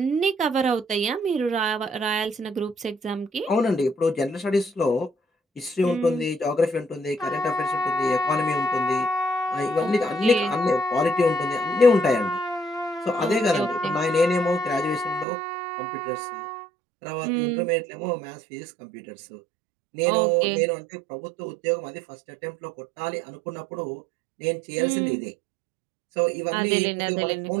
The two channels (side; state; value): left; drops out; at 15.2 s